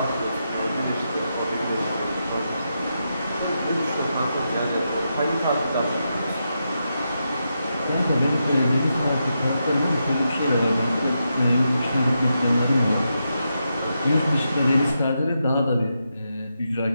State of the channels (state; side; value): inverted; both; correlation -0.85